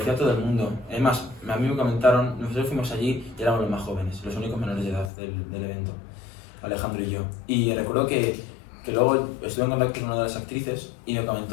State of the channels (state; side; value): drops out; right; at 5.1 s